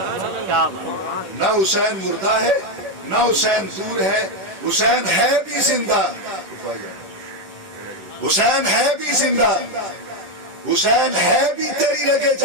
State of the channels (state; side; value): late; left; 10 ms